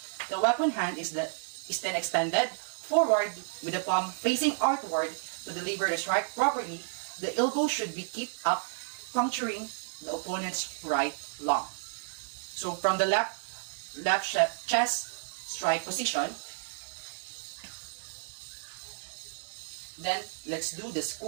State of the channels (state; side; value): silent; left; digital silence